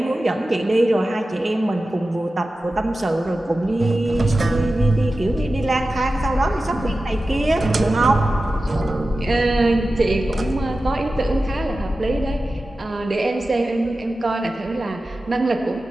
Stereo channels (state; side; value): normal; both; correlation 0.94